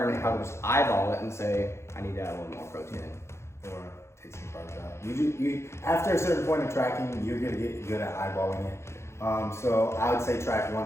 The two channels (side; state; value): right; late; 0.13 ms